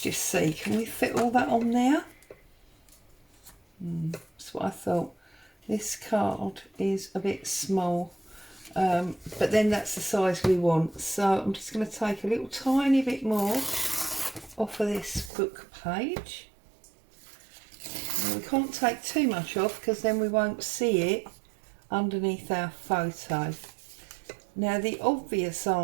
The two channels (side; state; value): left; drops out; at 15.3 s